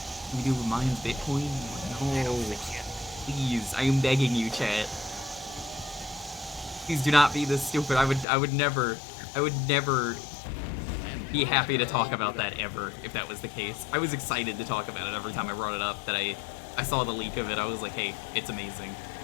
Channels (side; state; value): right; drops out; at 8.2 s